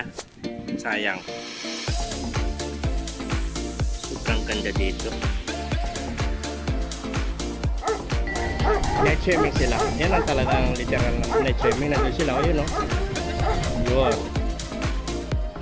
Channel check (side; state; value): both; identical; correlation 1.00